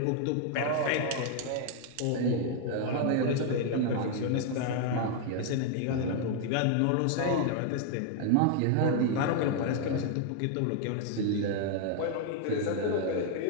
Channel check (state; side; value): different; both; correlation 0.00